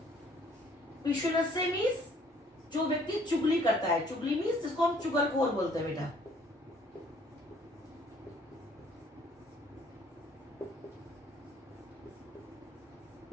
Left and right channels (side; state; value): both; normal; correlation 0.60